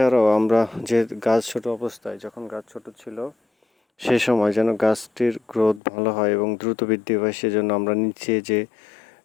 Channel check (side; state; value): right; drops out; at 5.8 s